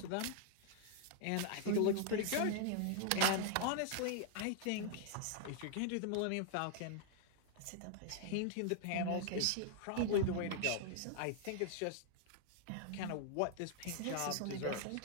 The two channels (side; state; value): both; different; correlation 0.00